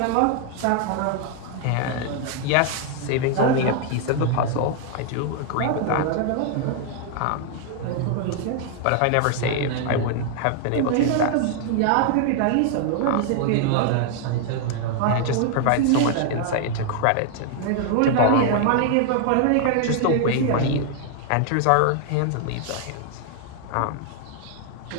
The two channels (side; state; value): both; different; correlation 0.00